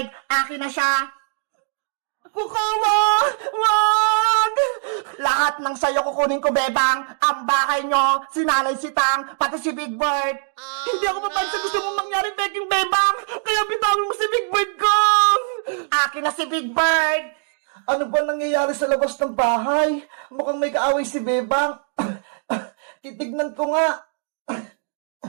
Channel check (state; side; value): silent; left; 64 dB below the other